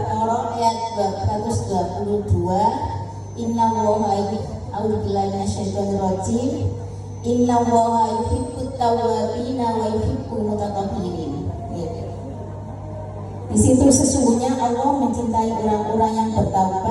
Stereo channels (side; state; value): both; identical; correlation 1.00